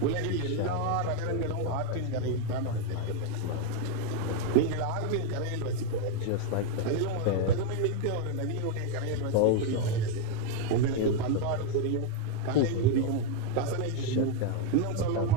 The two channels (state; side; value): different; both; correlation 0.01